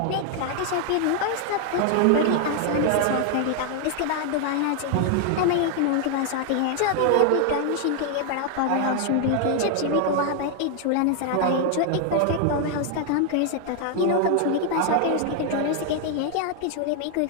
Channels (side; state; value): both; different; correlation 0.00